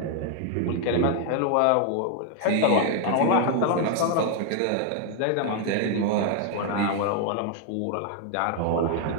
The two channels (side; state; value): both; different; correlation 0.00